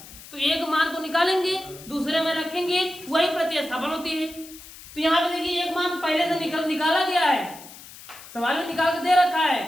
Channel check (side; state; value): left; noise; hiss, 17 dB below the sound